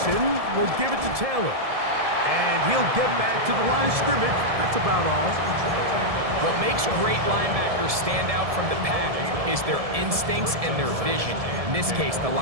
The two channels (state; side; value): late; left; 1.7 ms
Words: will give it to Taylor. And he'll get back to the line of scrimmage. That's about all. What makes great linebackers stand out from the pack is their instincts and their vision. In this case, the